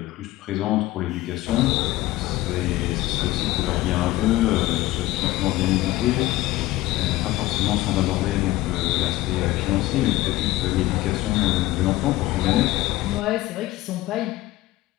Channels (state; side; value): quieter; right; 17.3 dB